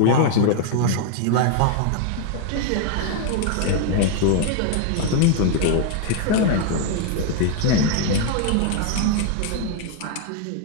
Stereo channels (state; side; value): different; both; correlation 0.00